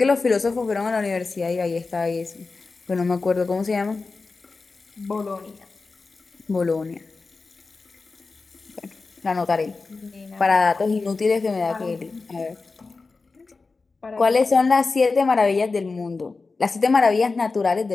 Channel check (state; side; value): quieter; right; 4.0 dB